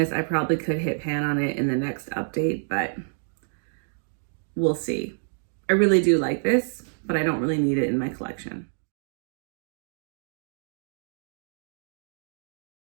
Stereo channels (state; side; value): silent; left; digital silence